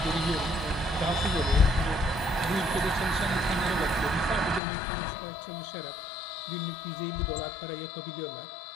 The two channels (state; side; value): drops out; right; at 4.6 s